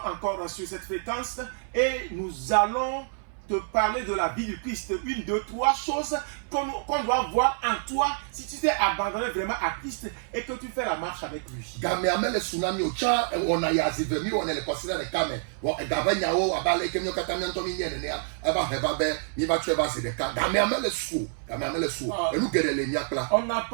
encore sur cette fréquence et nous allons te parler de la vie du Christ. Une, deux, trois choses qu'on doit voir en toi si tu t'es abandonné vraiment à Christ et que tu fais la marche avec lui. Game amele tsunami o cha on a yazive mi on le considère le kame wo gabanya o abale kemyo katamya ntomi nyene ne eba heba be mi ba tue ba se de ka game amele su et nous gere le nyakla. On n'a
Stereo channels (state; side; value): silent; left; 58 dB below the other